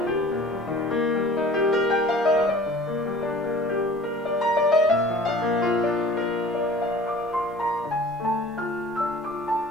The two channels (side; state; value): both; normal; correlation 0.46